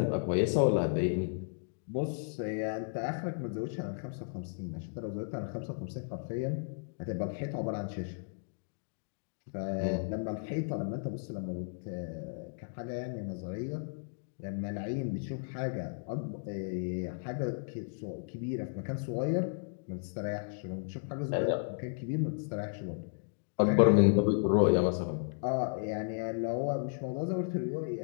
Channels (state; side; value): silent; right; digital silence